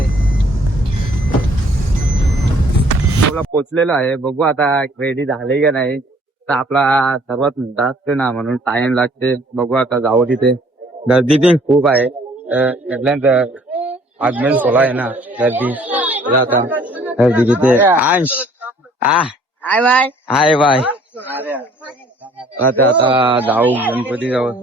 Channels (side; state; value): both; normal; correlation 0.58